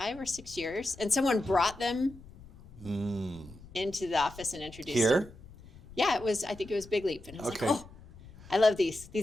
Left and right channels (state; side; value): noise; left; rumble, 20 dB below the sound